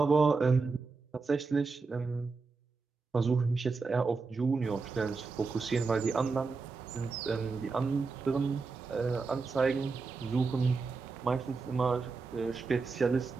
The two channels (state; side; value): quieter; left; 4.4 dB